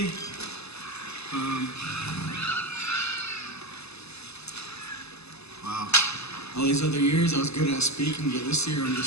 Wow. All these other years I was good at speaking, but this year I don't know.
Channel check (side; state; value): right; late; 0.79 ms